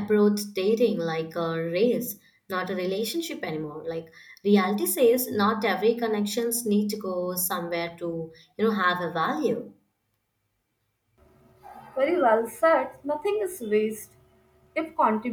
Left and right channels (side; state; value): both; identical; correlation 1.00